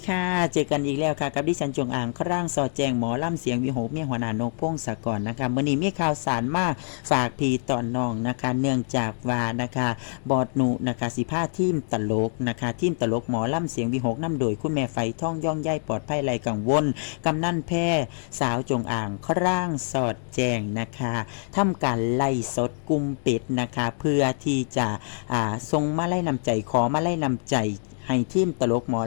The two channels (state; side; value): silent; right; digital silence